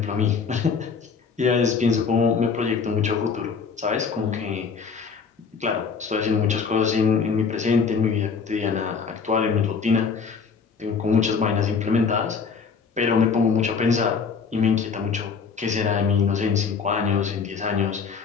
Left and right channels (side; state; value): right; quieter; 5.6 dB